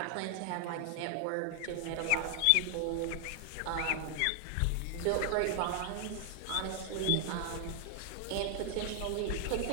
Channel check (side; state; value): both; different; correlation 0.00